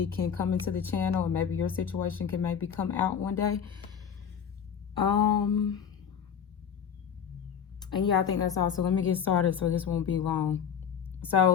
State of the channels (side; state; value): right; quieter; 7.7 dB